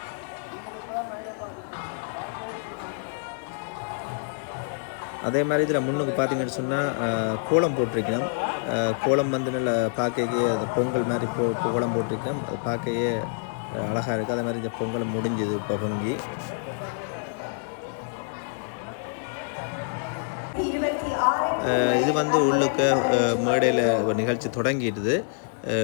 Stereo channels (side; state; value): right; silent; digital silence